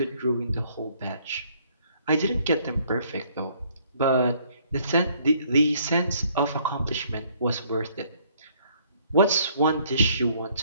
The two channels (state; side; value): inverted; both; correlation -0.64